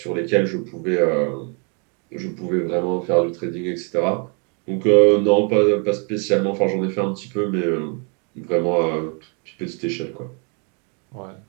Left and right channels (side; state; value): left; quieter; 37.3 dB